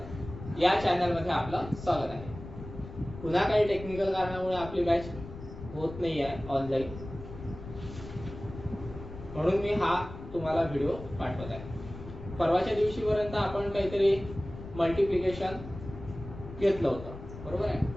या चॅनलमध्ये आपलं स्वागत आहे. पुन्हा काही टेक्निकल कारणामुळे आपली बॅच होत नाही आहे ऑनलाईन, म्हणून मी हा तुम्हाला व्हिडिओ पाठवत आहे. परवाच्या दिवशीपर्यंत आपण काहीतरी मल्टिप्लिकेशन घेतलं होतं, बरोबर आहे,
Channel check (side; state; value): left; noise; rumble, 12 dB below the sound